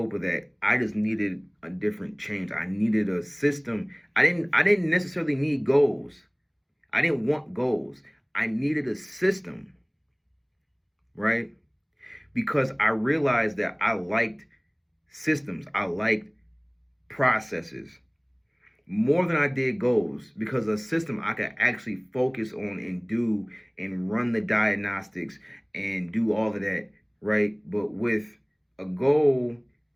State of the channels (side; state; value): both; identical; correlation 1.00